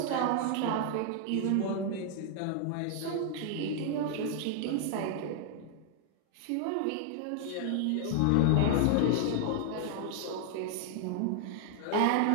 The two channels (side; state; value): both; different; correlation 0.00